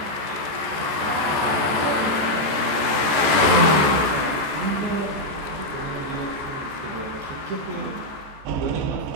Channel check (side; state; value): left; late; 14 ms